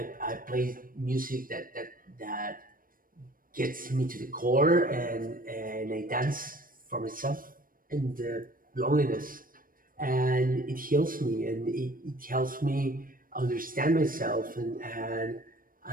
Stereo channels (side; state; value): left; late; 0.41 ms